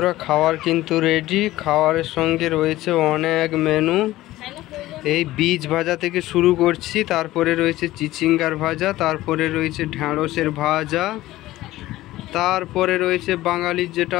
খাবার কিন্তু রেডি। খাবারের সঙ্গে রয়েছে অনেক মেনু। এই বীজ ভাজা থেকে শুরু করছি, তারপরে রয়েছে চিচিঙ্গার ভাজা, তারপরে রয়েছে ঢ্যাঁড়সের ভাজা, তারপরে রয়েছে বাঙালির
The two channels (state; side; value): quieter; right; 16.3 dB